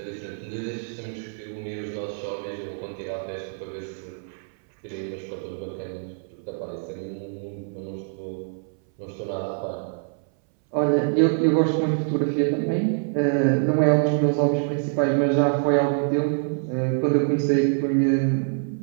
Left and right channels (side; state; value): left; silent; 60 dB below the other